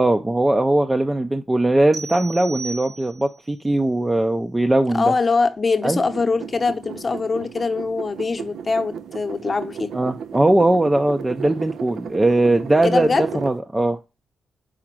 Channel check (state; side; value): normal; both; correlation 0.94